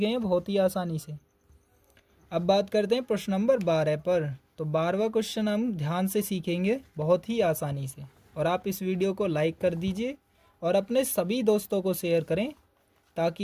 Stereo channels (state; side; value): identical; both; correlation 1.00